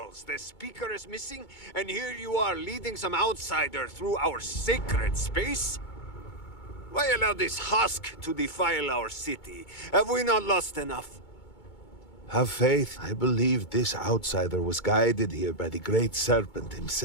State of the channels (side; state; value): right; late; 2.2 ms